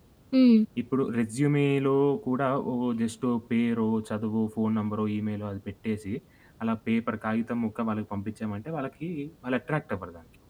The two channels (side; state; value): both; identical; correlation 1.00